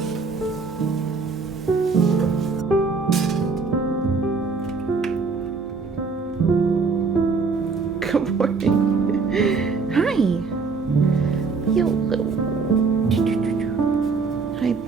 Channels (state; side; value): quieter; left; 4.6 dB